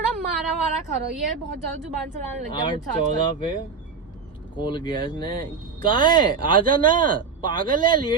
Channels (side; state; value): left; quieter; 5.5 dB